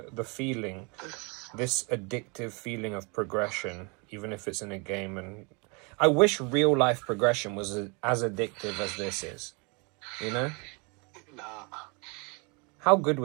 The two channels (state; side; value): quieter; left; 31.3 dB